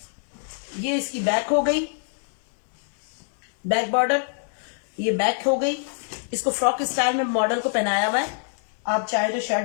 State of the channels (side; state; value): right; silent; digital silence